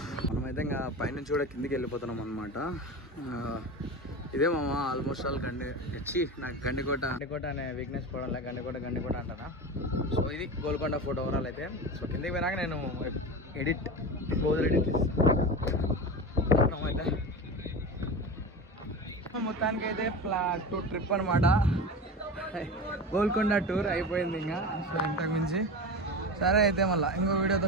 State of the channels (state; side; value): normal; both; correlation 0.27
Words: మనమైతే ఇంకా పైనుంచి కూడా కిందికి వెళ్ళిపోతున్నాం అనమాట. ఇదే మామ ఆల్మోస్ట్ ఆల్ నాకు గండికోట అనే వీక్నెస్ పోవడంలో గండికోట అంటారా. సో ఇది గోల్కొండ ఫోటో ఓవరాల్ అయితే. సో కిందికి పోయినాక నేను క్లోజ్ ఎడిట్ ఇస్తాను అయితే. మొత్తానికి అయితే ట్రిప్ అనమాట, గోల్కొండ టూర్ అయిపోయింది ఇంకా. సో ఇంతకు మించి సరే అయితే మళ్ళీ ఇంకో